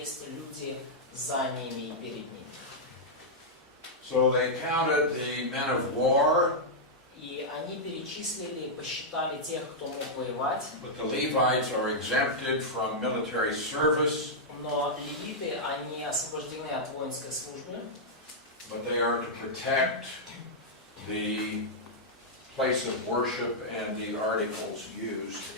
люди за ними и перед ними. So they counted the men of war. И они перечислили, посчитали тех, кто мог воевать. But the Levites are exempted from military service. Но левиты, они освобождены от воинской службы. But they are to protect the place of worship and the articles used.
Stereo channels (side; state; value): both; normal; correlation -0.07